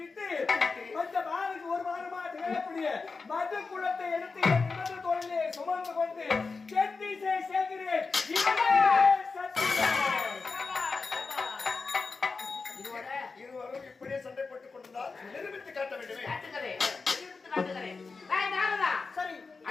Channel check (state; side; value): quieter; right; 4.4 dB